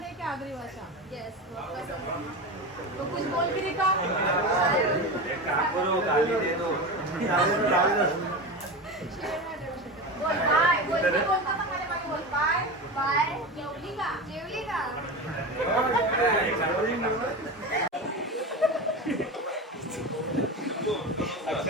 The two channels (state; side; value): normal; both; correlation 0.24